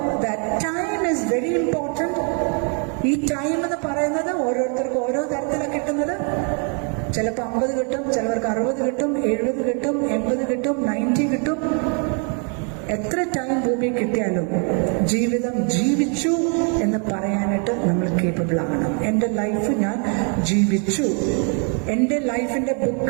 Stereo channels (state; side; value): quieter; left; 39.6 dB